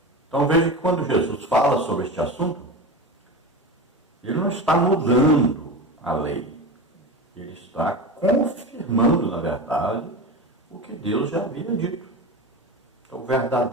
Então veja que quando Jesus fala sobre este assunto, ele não está mudando a lei. Ele está confirmando, na verdade, o que Deus já havia dito. Então, o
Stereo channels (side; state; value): both; normal; correlation 0.26